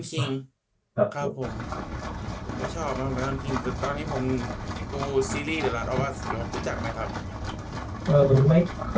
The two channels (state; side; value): identical; both; correlation 1.00